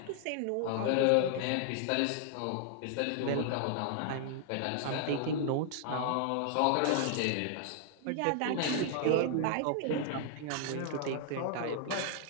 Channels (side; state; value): both; different; correlation 0.00